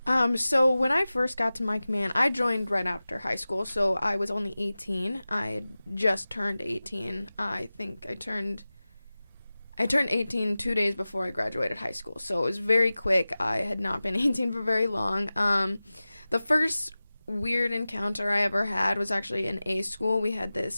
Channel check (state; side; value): inverted; both; correlation -0.97